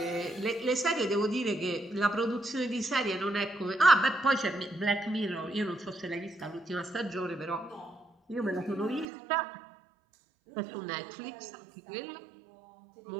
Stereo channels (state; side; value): drops out; left; at 9.1 s